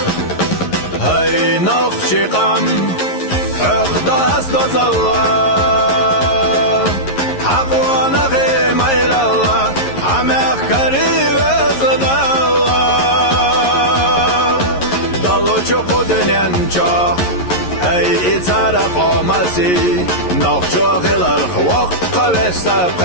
هاي نخشي قم حق داس دوزالله حق وانا غي ميل الله عمق قريب ازدالله دلو چوكو دنينچا هاي اتارا قومسي نخشو غيلر خوق قوشتا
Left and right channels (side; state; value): right; late; 11 ms